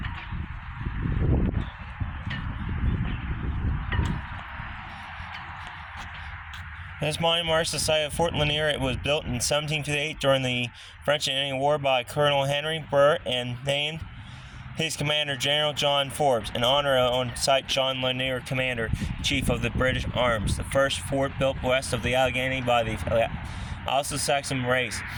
This monument marks the site of Fort Ligonier. It was built in 1758 during the French and Indian War by Colonel Henry Burr and named his commander, General John Forbes, in honor on site John Ligonier, Commander-Chief of the British Arms, the first fort built west of the Allegheny by the Anglo-Saxon race,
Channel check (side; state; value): both; identical; correlation 1.00